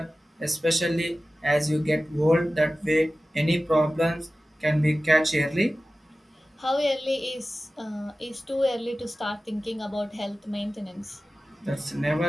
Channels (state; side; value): normal; both; correlation 0.95